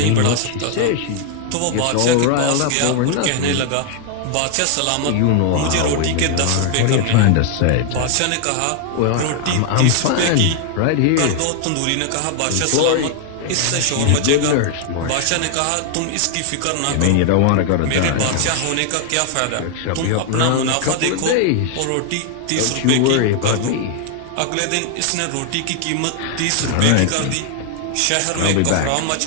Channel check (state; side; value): different; both; correlation 0.00